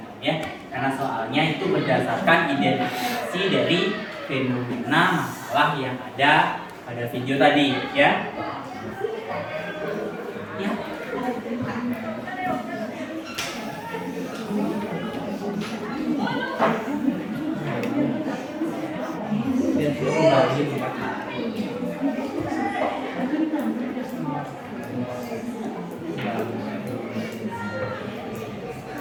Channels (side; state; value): both; identical; correlation 1.00